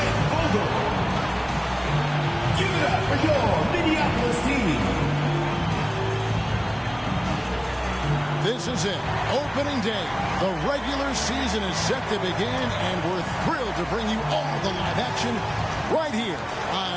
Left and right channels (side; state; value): both; identical; correlation 1.00